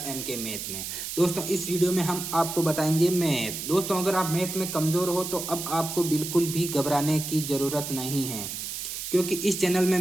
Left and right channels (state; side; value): noise; right; hiss, 6 dB below the sound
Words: MK मैथ में। दोस्तों, इस वीडियो में हम आपको बताएंगे मैथ। दोस्तों, अगर आप मैथ में कमज़ोर हो तो अब आपको बिल्कुल भी घबराने की ज़रूरत नहीं है, क्योंकि इस चैनल में